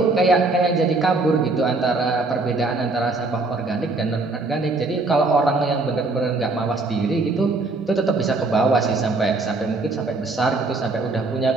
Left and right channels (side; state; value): left; quieter; 3.4 dB